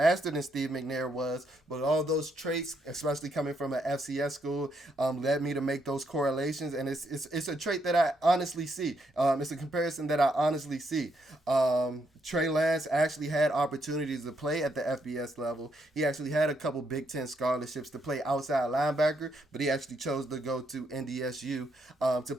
than Steve McNair was, but all those traits, especially coming from an FCS school, led me to make those correlations, and it's a trait that I honestly see. It's a comparison that I honestly see. Trey Lance actually had opportunities to play at the FBS level. He actually had a couple Big Ten scholarships to play outside linebacker, but he actually chose to go to NDSU to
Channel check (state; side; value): normal; both; correlation 0.76